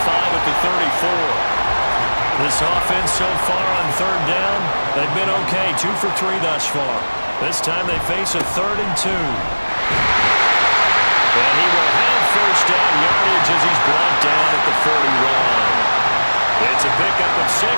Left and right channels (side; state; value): both; inverted; correlation -1.00